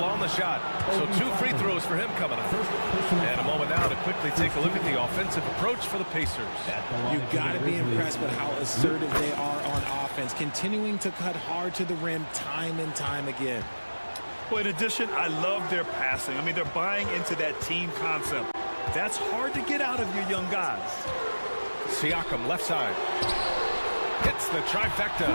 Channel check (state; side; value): inverted; both; correlation -1.00